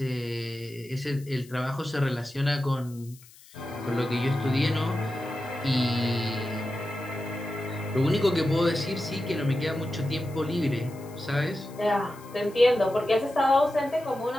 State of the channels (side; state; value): left; noise; hiss, 23 dB below the sound